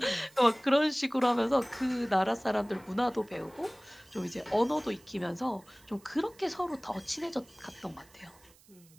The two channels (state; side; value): noise; right; hiss, 27 dB below the sound